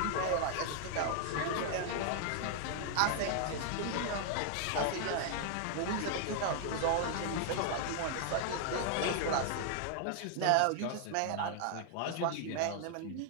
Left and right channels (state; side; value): different; both; correlation 0.00